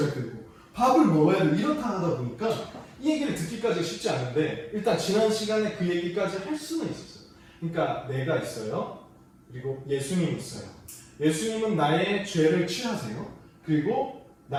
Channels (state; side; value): identical; both; correlation 1.00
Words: 되고, 밥을 먹어야 되고, 이렇다 하다 보니까 이 얘기를 듣기까지 쉽지 않은데, 일단 지난 시간에 그 얘기까지 할 수는 있었어요. 그러니까 내가 있어요. 그리고 예수님 있어요. 예수님은 나의 죄를 취하세요. 그리고